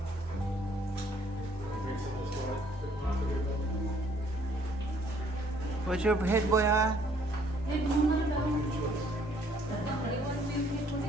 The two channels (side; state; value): both; normal; correlation 0.63